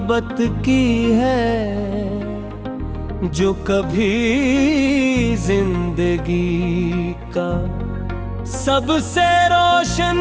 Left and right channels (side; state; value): both; identical; correlation 1.00